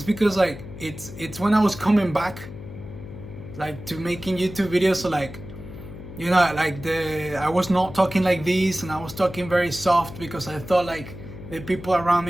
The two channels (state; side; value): noise; left; hum, 13 dB below the sound